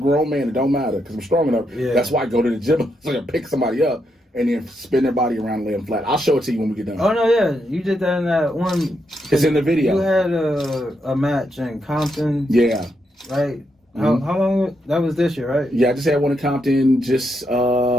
man, it don't matter because I'm strong enough. Yeah. That's why I go to the gym so I can pick somebody up and then spin their body around and lay them flat. I'll show it to you when we get done. Oh, no, yeah. You did that in that one. It's in the video. You had a match in Compton. Yeah. Right? How long? That was this year, right? Yeah, I just had one in Compton just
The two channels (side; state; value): both; normal; correlation 0.81